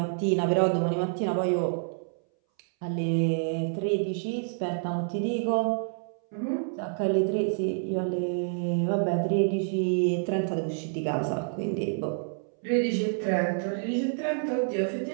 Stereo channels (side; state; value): left; silent; 59 dB below the other